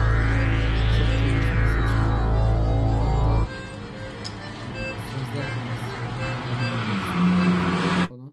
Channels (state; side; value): identical; both; correlation 1.00